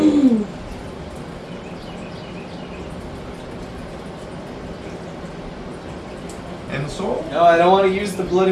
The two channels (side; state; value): both; identical; correlation 1.00